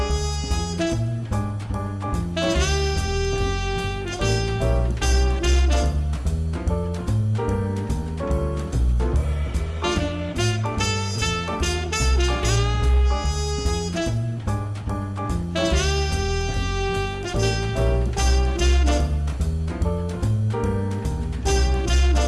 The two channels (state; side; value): identical; both; correlation 1.00